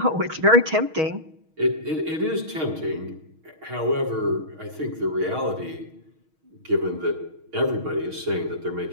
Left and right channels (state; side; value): late; left; 6.3 ms